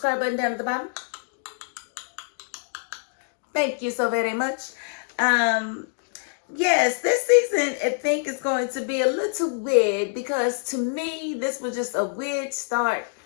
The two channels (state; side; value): silent; right; digital silence